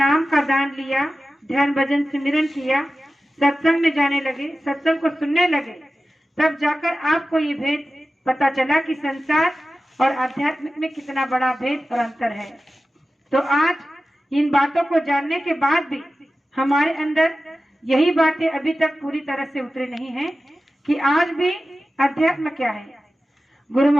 का दान लिया, ध्यान भजन सिमरन किया, सत्संग में जाने लगे, सत्संग को सुनने लगे, तब जाकर आपको ये भेद पता चला कि संसार और आध्यात्मिक में कितना बड़ा भेद और अंतर है। तो आज इन बातों को जानने के बाद भी हमारे अंदर यही बातें अभी तक पूरी तरह से उतरी नहीं है कि आज भी अध्यात्म क्या है। गुरु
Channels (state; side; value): normal; both; correlation 0.95